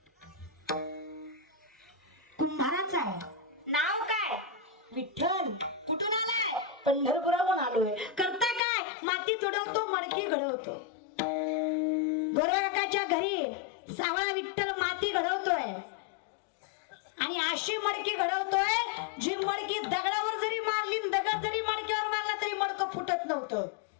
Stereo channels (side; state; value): right; drops out; at 8.6 s